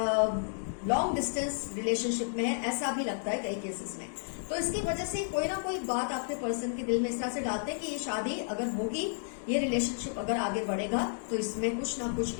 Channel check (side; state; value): right; silent; digital silence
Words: लॉन्ग डिस्टेंस रिलेशनशिप में है, ऐसा भी लगता है कई केसेस में। तो इसकी वजह से कोई ना कोई बात आपके पर्सन के दिल में इस तरह से डालते हैं कि ये शादी अगर होगी, ये रिलेशनशिप अगर आगे बढ़ेगा तो इसमें कुछ ना कुछ